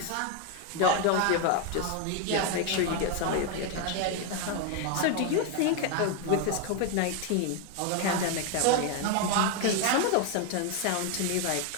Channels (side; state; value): both; different; correlation 0.01